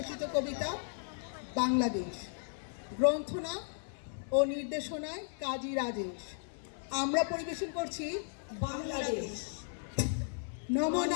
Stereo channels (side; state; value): right; silent; 54 dB below the other